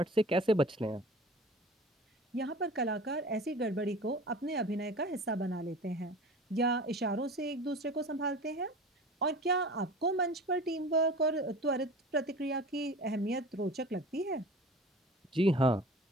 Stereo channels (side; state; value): both; normal; correlation 0.39